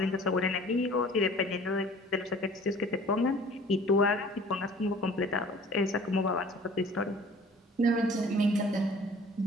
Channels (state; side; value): normal; both; correlation 0.49